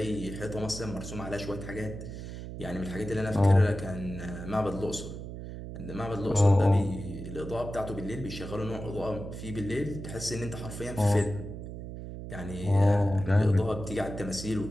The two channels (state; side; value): noise; right; hum, 9 dB below the sound